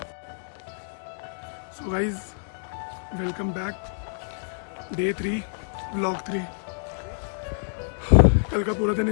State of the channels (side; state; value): right; silent; digital silence